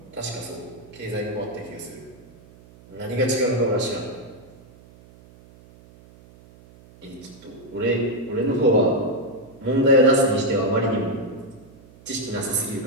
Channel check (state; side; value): noise; right; hum, 24 dB below the sound